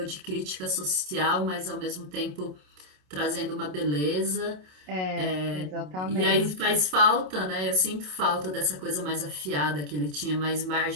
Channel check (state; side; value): late; left; 27 ms